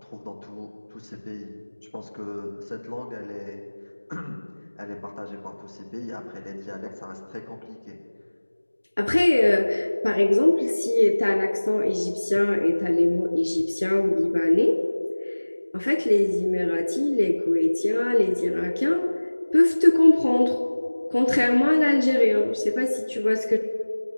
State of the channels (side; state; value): both; inverted; correlation -1.00